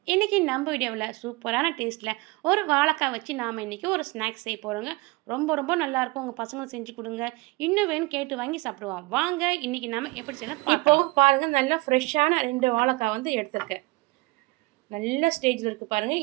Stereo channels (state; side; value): quieter; left; 23.7 dB